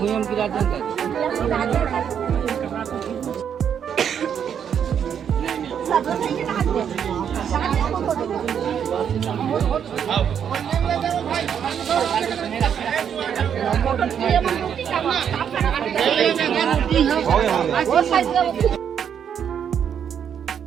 गिरा देंगे वो साइड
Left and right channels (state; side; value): quieter; left; 8.2 dB